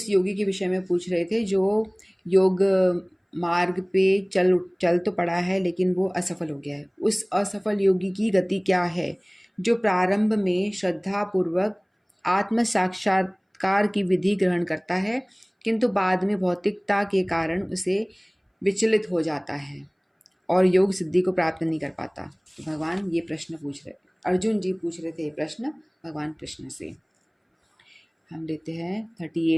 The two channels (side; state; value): both; identical; correlation 1.00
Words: योगी के विषय में पूछ रहे थे जो योग मार्ग पे चल तो पड़ा है लेकिन वो असफल हो गया है। उस असफल योगी की गति क्या है जो प्रारंभ में श्रद्धा पूर्वक आत्म साक्षात्कार की विधि ग्रहण करता है किंतु बाद में भौतिकता के कारण उसे विचलित हो जाता है और योग सिद्धि को प्राप्त नहीं कर पाता। तो भगवान ये प्रश्न पूछ रहे, अर्जुन जी पूछ रहे थे प्रश्न भगवान कृष्ण से। हम लेते हैं